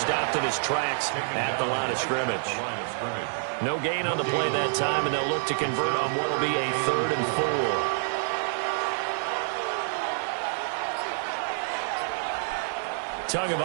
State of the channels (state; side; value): silent; left; 60 dB below the other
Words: in his tracks at the line of scrimmage. No gain on the play that time, and they'll look to convert on what will be a 3rd and 4.